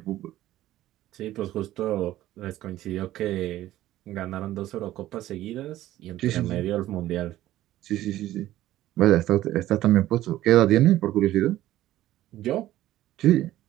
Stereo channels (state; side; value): quieter; left; 14.5 dB